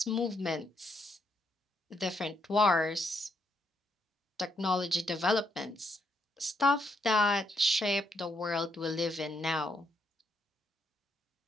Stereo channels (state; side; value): normal; both; correlation 0.76